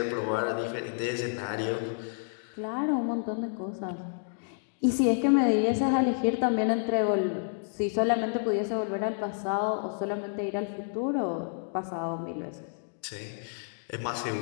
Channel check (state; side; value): silent; right; digital silence